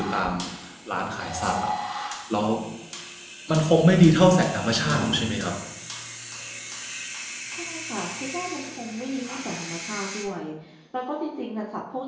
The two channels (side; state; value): both; identical; correlation 1.00